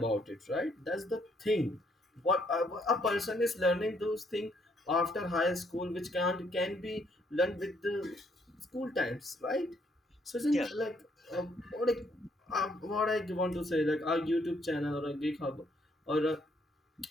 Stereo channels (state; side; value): normal; both; correlation 0.70